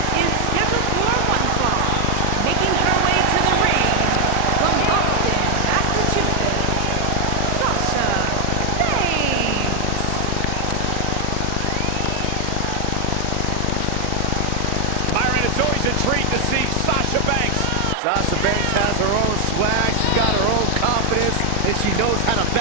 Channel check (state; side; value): different; both; correlation 0.00